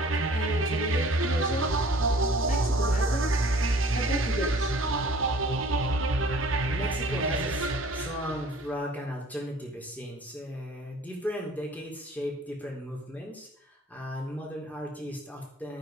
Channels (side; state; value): both; normal; correlation 0.50